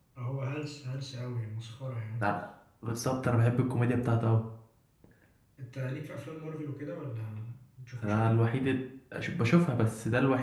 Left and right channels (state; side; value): identical; both; correlation 1.00